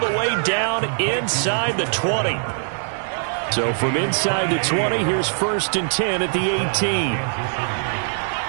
way down inside the 20. So from inside the 20, here's 1st and 10 at the 18.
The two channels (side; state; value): left; silent; digital silence